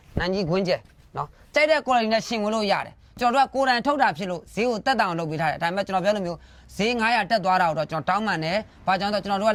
နံကြီးခွင်းကျက်နော်ကြိုက်တဲ့ quality နဲ့ရှင်ဝင်လို့ရတယ်ကျွန်တော်တို့ကကိုယ်တိုင်ထုတ်တာဖြစ်လို့ဈေးကိုတက်တောင်လုပ်ပေးထားတယ်ဒါပေမဲ့ကျွန်တော်ပြောလို့မျိုးဈေး900တက်သွားတာတော့ကျွန်တော်တောင်းပန်တယ်ဘာကြောင့်လဲဆိုတော့ကျွန်တော်တို့က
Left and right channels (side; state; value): both; identical; correlation 1.00